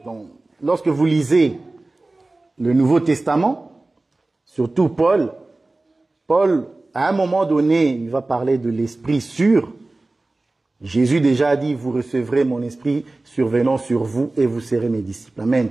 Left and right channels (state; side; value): quieter; left; 3.0 dB